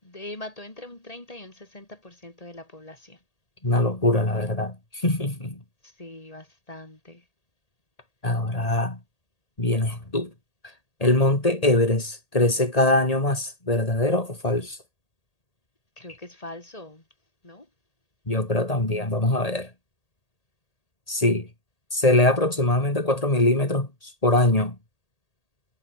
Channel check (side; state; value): right; late; 1.8 ms